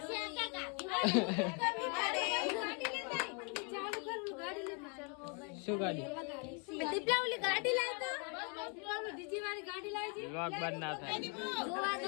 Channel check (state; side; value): quieter; right; 36.5 dB